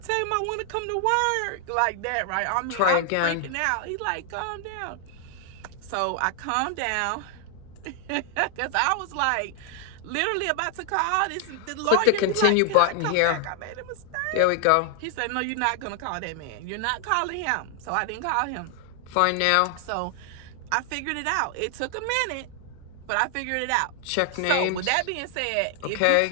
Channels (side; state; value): both; different; correlation 0.00